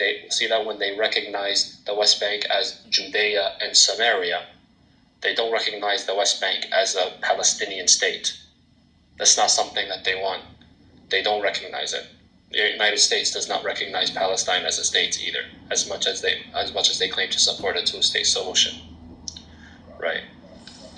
when they recognize the West Bank as Judea and Samaria. They don't recognize the West Bank as a Palestinian state. That's not something that they want. They don't recognize it. The United States does not recognize Palestine as a state either, as much as they claim to support a two-state solution. Right?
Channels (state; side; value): identical; both; correlation 1.00